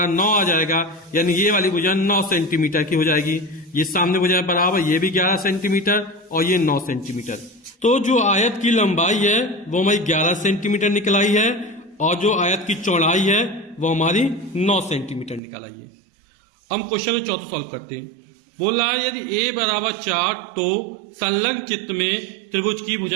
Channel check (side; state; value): left; drops out; at 15.4 s